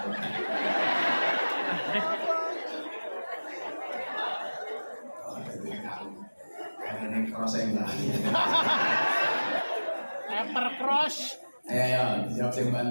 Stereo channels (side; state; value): both; inverted; correlation -1.00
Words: ini cross enggak. Pepper cross. Ayo, dijawab sing